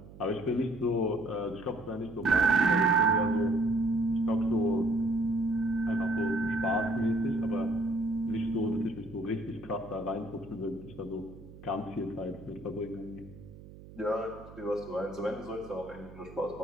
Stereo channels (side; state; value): right; noise; hum, 18 dB below the sound